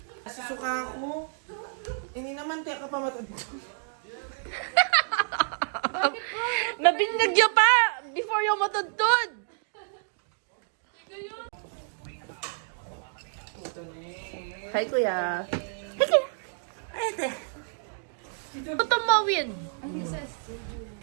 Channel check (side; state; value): left; silent; digital silence